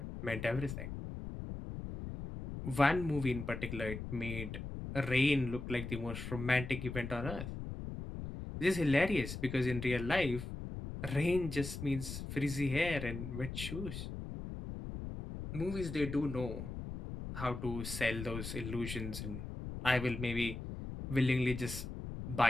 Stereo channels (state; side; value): noise; left; rumble, 7 dB below the sound